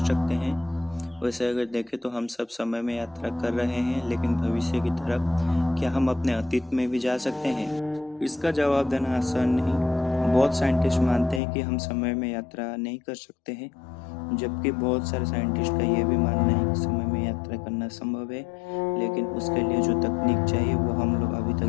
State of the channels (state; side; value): drops out; right; at 11.4 s